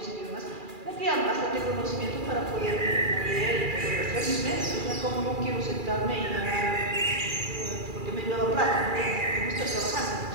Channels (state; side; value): late; left; 2.4 ms